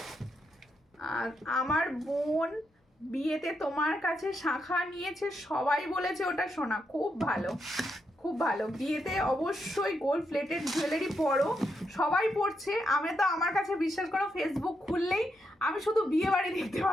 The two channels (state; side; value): normal; both; correlation 0.82